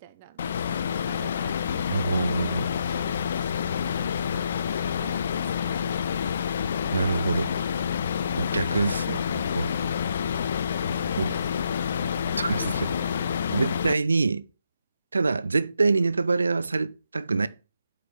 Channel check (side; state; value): both; inverted; correlation -0.78